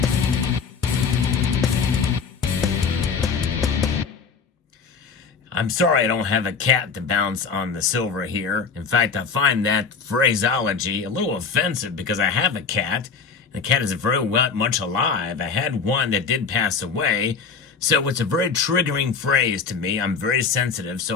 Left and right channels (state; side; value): quieter; right; 5.5 dB